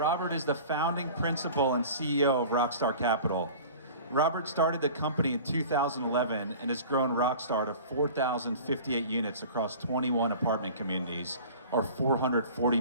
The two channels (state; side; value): inverted; both; correlation -0.41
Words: is the founding principal and CEO of Rockstar Capital. Robert started the company in 2011 and has grown Rockstar to 4,058 units across 21 apartment communities, or $440